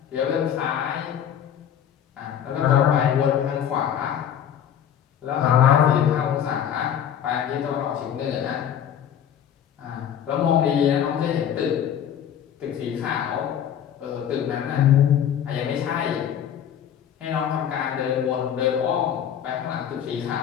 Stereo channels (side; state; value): right; quieter; 9.3 dB